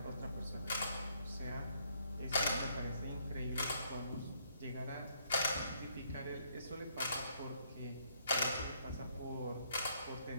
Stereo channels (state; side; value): inverted; both; correlation -0.70